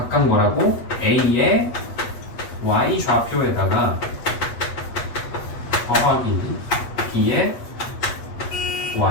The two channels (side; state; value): right; late; 8.3 ms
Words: 뭐라고? a의 y좌표에다가 더하기 b의